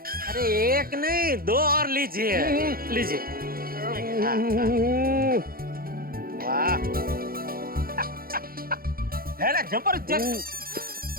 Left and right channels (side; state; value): left; late; 0.43 ms